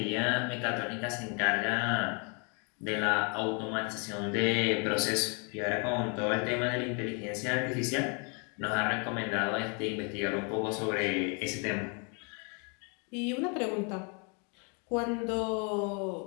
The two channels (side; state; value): right; quieter; 35.5 dB